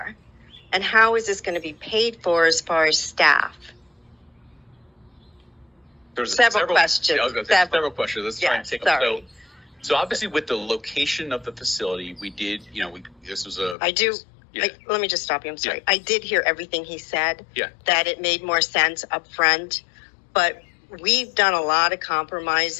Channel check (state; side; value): drops out; right; at 13.8 s